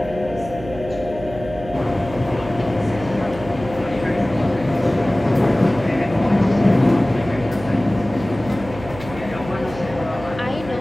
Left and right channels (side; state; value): right; noise; hum, 14 dB below the sound